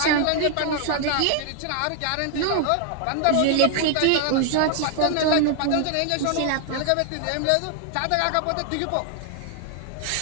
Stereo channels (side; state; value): both; different; correlation 0.00